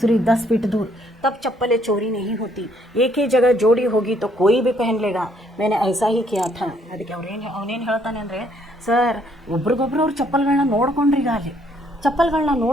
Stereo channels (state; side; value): normal; both; correlation 0.67